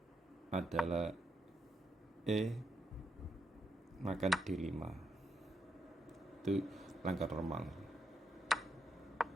adalah E makan D5. Itu langkah normal.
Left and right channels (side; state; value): both; normal; correlation 0.81